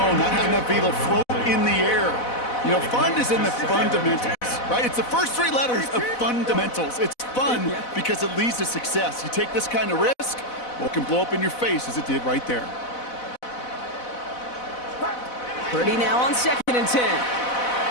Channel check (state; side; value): late; right; 4.0 ms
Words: not having enough vehicle float in the air. You know, fun is in the fundamentals, right? It's the first three letters of fundamentals. It's fun because it leads to success. You take this kind of risk, well, it can blow up in your face as it did right there. Purdy now on second and 10.